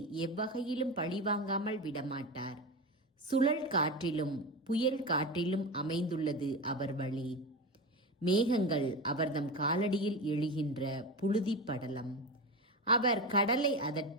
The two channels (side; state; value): both; normal; correlation 0.22